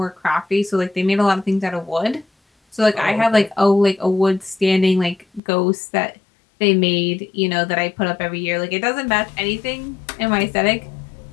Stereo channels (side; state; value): right; drops out; at 5.4 s